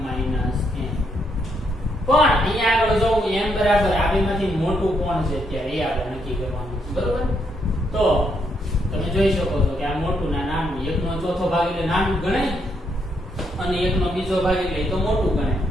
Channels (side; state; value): both; normal; correlation 0.76